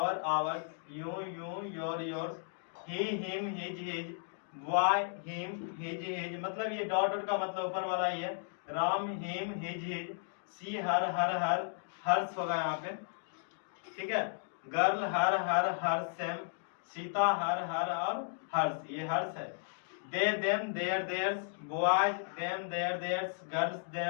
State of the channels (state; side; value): silent; right; digital silence